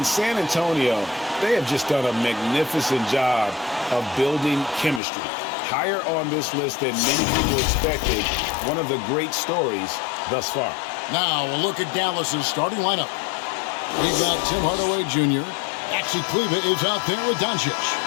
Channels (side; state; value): right; drops out; at 5.0 s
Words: San Antonio, they have just done a magnificent job of building chemistry. Higher on this list than many people expected. One of the great stories thus far. Now, we'll look at Dallas's starting lineup. We've got Tim Hardaway Jr. Maxi Kleba is out there with Doncic.